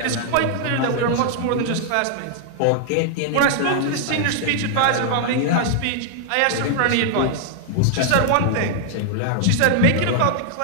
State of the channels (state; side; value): different; both; correlation -0.01